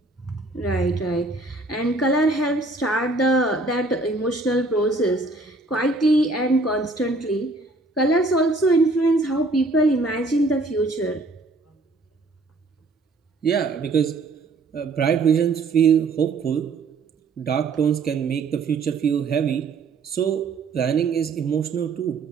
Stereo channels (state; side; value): quieter; left; 3.4 dB